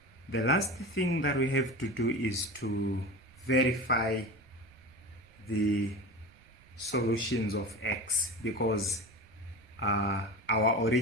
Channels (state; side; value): noise; right; rumble, 27 dB below the sound